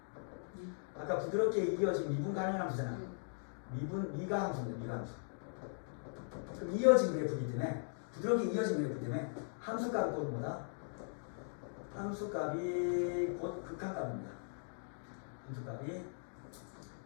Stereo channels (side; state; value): right; silent; digital silence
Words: 아까 부드럽게 이어진 미분 가능한 함수잖아. 미가 함수입니다. 미가 함수. 그럼 이어진 그래프이기 때문에 부드럽게 이어진 그래프 때문에 함수값이 곧 뭐다? 함수값이 곧 극한값입니다. 함수값이